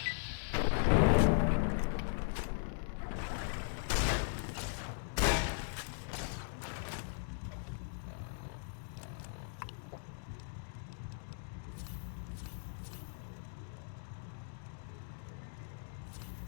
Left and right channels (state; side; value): silent; right; digital silence